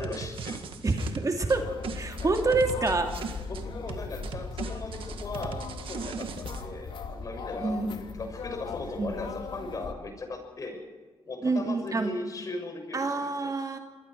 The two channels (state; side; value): normal; both; correlation 0.70